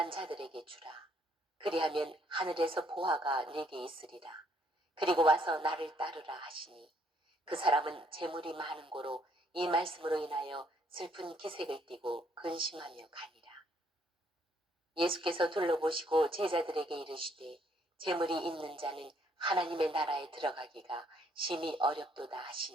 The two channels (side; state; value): both; normal; correlation 0.68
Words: 자들에게 주라. 그리하면 하늘에서 보화가 내게 있으리라. 그리고 와서 나를 따르라 하시니 그 사람은 재물이 많은 고로 이 말씀으로 인하여 슬픈 기색을 띠고 근심하며 가니라. 예수께서 둘러보시고 제자들에게 이르시되 재물이 있는 자는 하나님의 나라에 들어가기가 심히 어렵도다